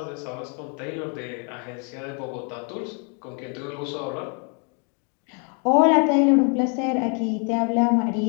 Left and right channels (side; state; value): right; quieter; 37.4 dB